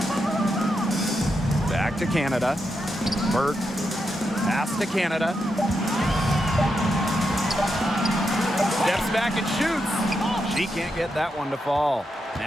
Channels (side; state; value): both; normal; correlation 0.85